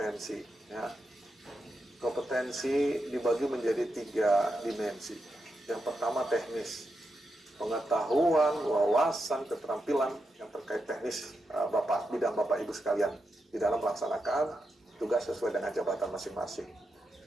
Ya. Kompetensi dibagi menjadi 3 dimensi. Yang pertama teknis, pengetahuan, wawasan, keterampilan yang terkait teknis bidang Bapak Ibu sekalian di dalam melaksanakan tugas sesuai dengan jabatan masing-masing.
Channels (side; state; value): both; normal; correlation 0.86